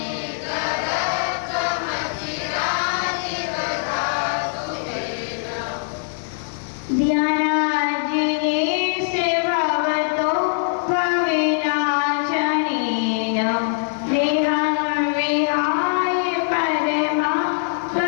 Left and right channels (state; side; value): silent; right; digital silence